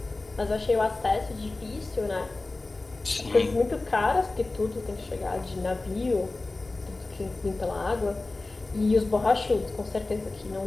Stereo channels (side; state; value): right; quieter; 3.2 dB